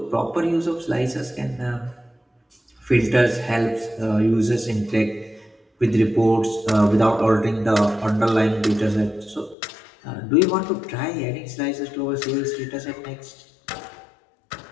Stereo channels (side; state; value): right; drops out; at 9.6 s